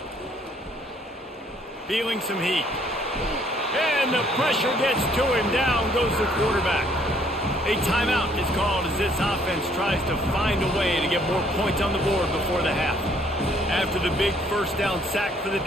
Feeling some heat. And the pressure gets to him. Down goes the quarterback. A timeout is called as this offense tries to find a way to get more points on the board before the half. After the big 1st down sack for the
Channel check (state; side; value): normal; both; correlation 0.64